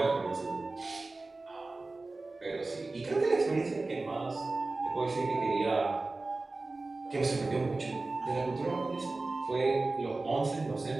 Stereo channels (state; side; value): quieter; left; 3.3 dB